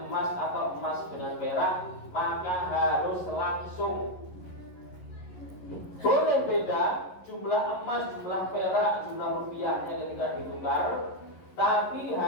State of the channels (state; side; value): late; right; 11 ms